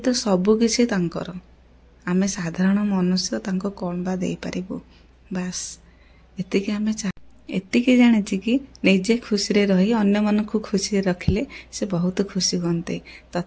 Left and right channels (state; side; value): identical; both; correlation 1.00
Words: ତ ସବୁ କିଛି ତାଙ୍କର। ଆମେ ସାଧାରଣ ମନୁଷ୍ୟ ତାଙ୍କୁ କ'ଣ ବା ଦେଇପାରିବୁ? ବାସ୍ ଏତିକି ଜାଣିଛି କି ନିଜେ ଖୁସିରେ ରହି ଅନ୍ୟମାନଙ୍କୁ ଖୁସିରେ ରଖିଲେ ସେ ବହୁତ ଖୁସି ହୁଅନ୍ତି।